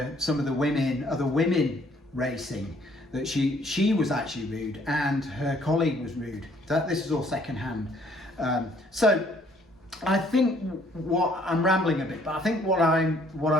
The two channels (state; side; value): normal; both; correlation 0.63